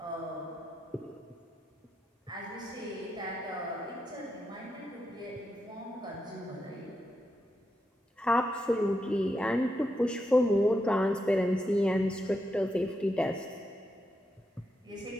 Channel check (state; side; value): normal; both; correlation 0.84